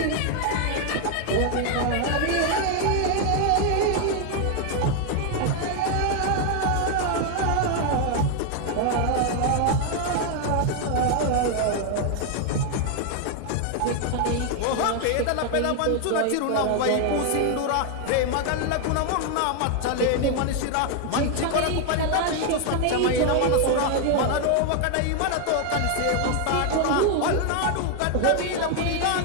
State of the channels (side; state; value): both; different; correlation 0.01